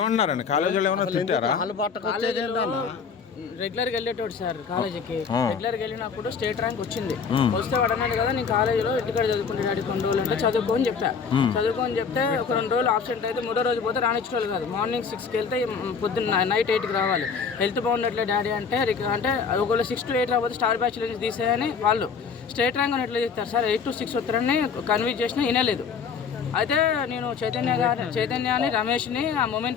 కాలేజీలో ఏమన్నా తిట్టారా? రెగ్యులర్గా వెళ్ళేటోడు సార్ కాలేజీకి. రెగ్యులర్గా వెళ్ళినప్పుడు స్టేట్ ర్యాంక్ వచ్చింది. వస్తే వాడు అన్నాడు కదా నేను కాలేజీలో ఇంటికాడ చదువుకుంటే డాడీ కొన్ని రోజులు అంటే చదువుకోని చెప్పా. చదువుకోని చెప్తే ఒక 2 రోజులు ఆబ్సెంట్ అయితే 3వ రోజు పోతే రానిచ్చేవాళ్ళు కాదు. మార్నింగ్ 6కి వెళ్తే పొద్దున్న నైట్ 8కి రావాలి. హెల్త్ బాగున్నట్లే డాడీ అంటే ఒకవేళ 6 to 8 రాకపోతే స్టార్ బ్యాచ్ నుంచి తీసేయని వాళ్ళు స్టేట్ ర్యాంక్ అని ఎట్లా చెప్తారు సార్. 8 to 6 వస్తారని కన్విన్స్ చేసినా వినలేదు. అయితే నేను చైతన్యాన్ని రమేష్ని ఆ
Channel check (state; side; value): quieter; right; 5.9 dB